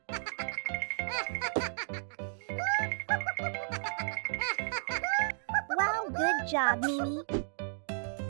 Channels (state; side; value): silent; left; digital silence